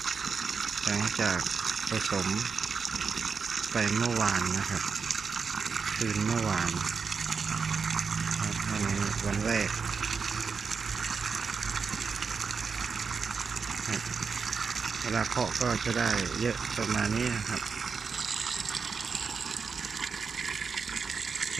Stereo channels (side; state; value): left; quieter; 5.4 dB